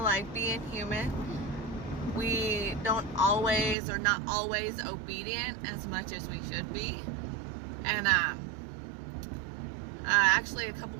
being human, we don't always or not always obedient as much as we should be. And actually a couple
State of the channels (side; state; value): left; drops out; at 3.8 s